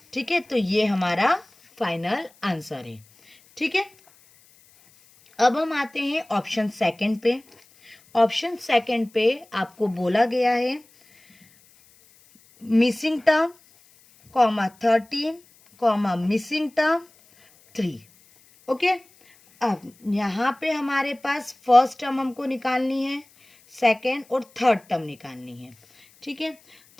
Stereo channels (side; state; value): left; noise; hiss, 29 dB below the sound